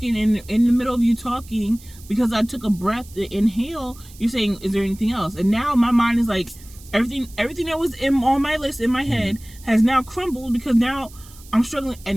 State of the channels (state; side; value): noise; right; hiss, 22 dB below the sound